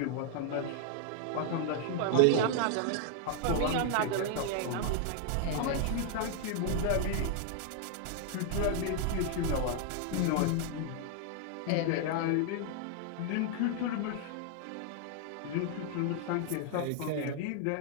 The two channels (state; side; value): different; both; correlation 0.00